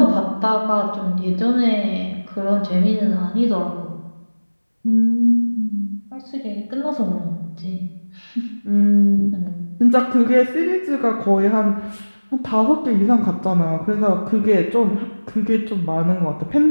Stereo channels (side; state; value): both; inverted; correlation -1.00